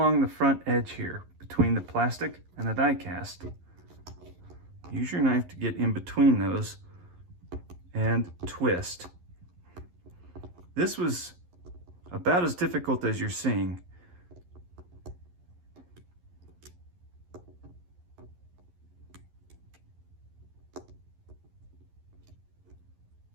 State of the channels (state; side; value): late; left; 11 ms